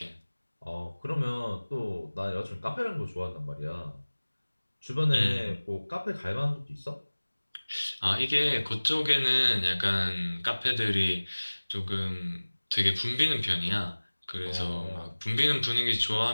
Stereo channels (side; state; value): both; inverted; correlation -1.00